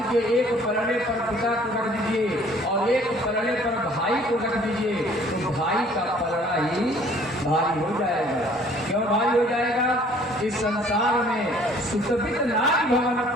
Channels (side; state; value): both; normal; correlation 0.56